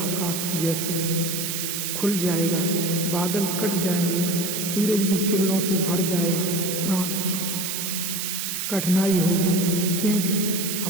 जैसे खुल जाएगा, बादल कट जाएंगे, सूरज की किरणों से भर जाएगा प्राण। कठिनाई होगी, क्योंकि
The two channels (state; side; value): noise; right; hiss, 2 dB below the sound